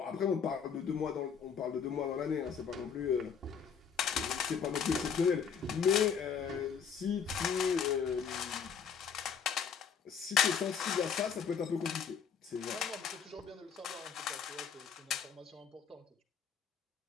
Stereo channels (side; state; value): right; quieter; 6.9 dB